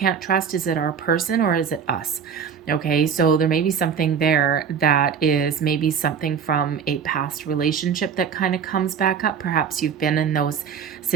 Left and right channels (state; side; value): quieter; left; 7.0 dB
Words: trust? Is it our person, or is it us? Okay, so there may be something there that is maybe something from a past relationship that kind of comes back up. Perhaps you've been in those